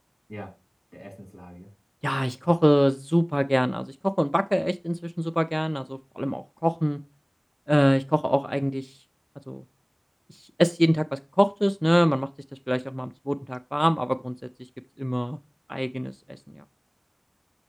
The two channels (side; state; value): both; identical; correlation 1.00